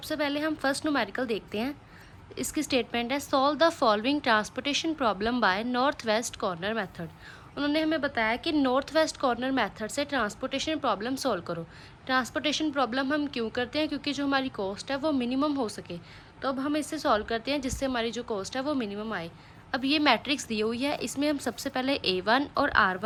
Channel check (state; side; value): identical; both; correlation 1.00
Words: पहले हम फर्स्ट न्यूमेरिकल देखते हैं। इसकी स्टेटमेंट है, solve the following transportation problem by north west corner method. उन्होंने हमें बताया कि नॉर्थ वेस्ट कॉर्नर मेथड से ट्रांसपोर्टेशन प्रॉब्लम सॉल्व करो। ट्रांसपोर्टेशन प्रॉब्लम हम क्यों करते हैं? क्योंकि जो हमारी कॉस्ट है वो मिनिमम हो सके। तो अब हम इसे सॉल्व करते हैं जिससे हमारी जो कॉस्ट है वो मिनिमम आए। अब ये मैट्रिक्स दी हुई है, इसमें हम सबसे पहले A1 और